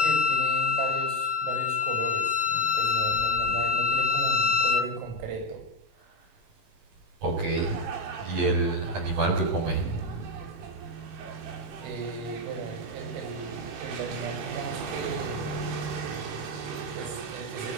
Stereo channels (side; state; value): left; late; 18 ms